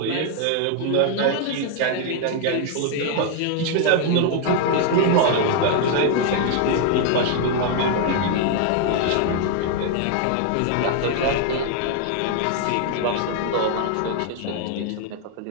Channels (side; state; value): both; different; correlation 0.00